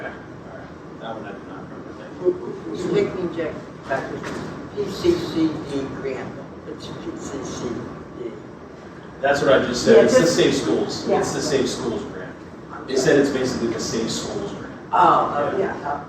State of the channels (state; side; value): identical; both; correlation 1.00